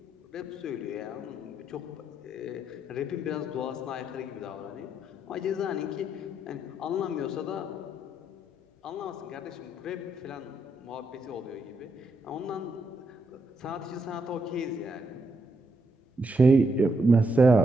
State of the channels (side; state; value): both; normal; correlation 0.79